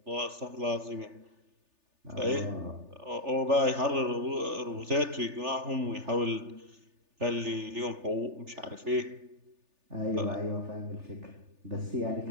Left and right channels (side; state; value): left; late; 3.4 ms